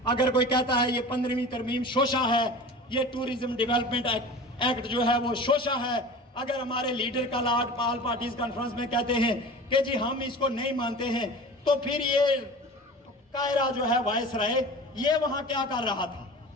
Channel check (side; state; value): both; normal; correlation 0.37